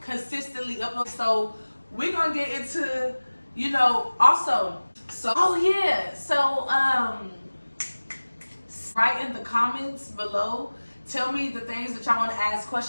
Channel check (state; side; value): inverted; both; correlation -1.00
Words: consistently upload. So we're gonna get into, you know, also. So, oh yeah, so write in the comments below. Tell me the things that y'all want to ask